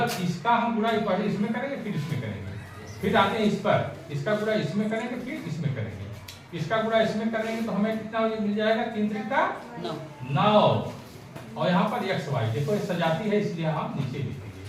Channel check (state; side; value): identical; both; correlation 1.00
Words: इसका हम गुणा पहले इसमें करेंगे, फिर इसमें करेंगे, फिर आते हैं इस पर, इसका गुणा इसमें करेंगे, फिर इसमें करेंगे, इसका गुणा इसमें करेंगे, तो हमें कितना मिल जाएगा 3 × 9, और यहाँ पर xy देखो सजाती है, इसलिए हम नीचे लिखेंगे।